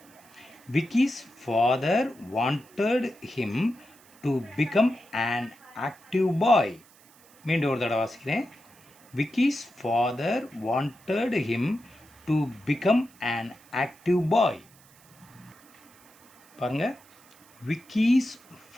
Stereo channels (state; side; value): noise; right; hiss, 27 dB below the sound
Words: Vicky's father wanted him to become an active பாய். மீண்டும் ஒரு தடவை வாசிக்கிறேன். Vicky's father wanted him to become an active பாய். பாருங்க, விக்கிஸ்